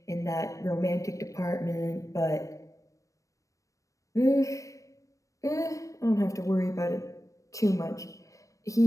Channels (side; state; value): right; late; 0.16 ms